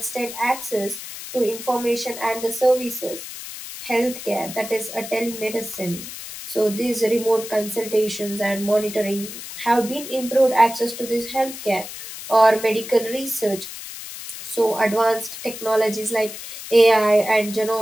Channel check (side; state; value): left; noise; hiss, 11 dB below the sound